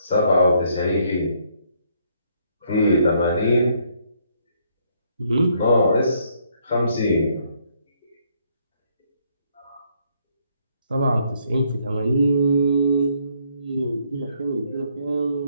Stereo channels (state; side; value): inverted; both; correlation -0.69